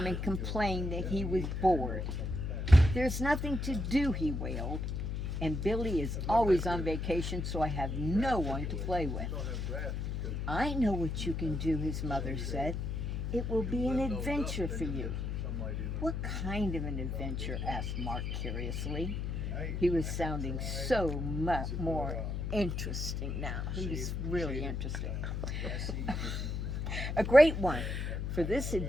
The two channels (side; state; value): left; noise; hum, 2 dB below the sound